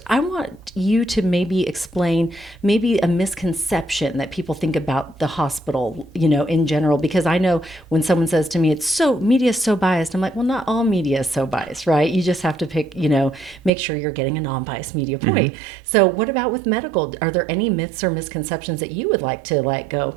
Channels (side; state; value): left; drops out; at 13.7 s